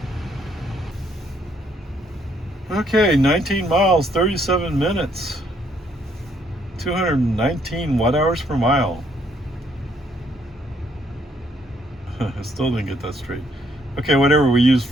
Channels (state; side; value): normal; both; correlation 0.69